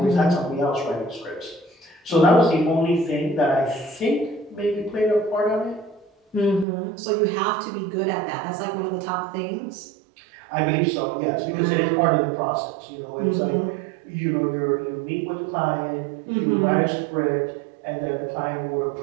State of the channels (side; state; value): left; drops out; at 6.7 s